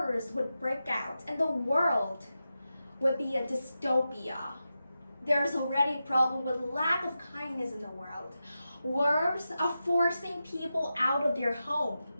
would break out, and the world would be a dystopia. There's already a problem with lack of kindness in the world. Wars are forcing people out of their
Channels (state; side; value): inverted; both; correlation -0.91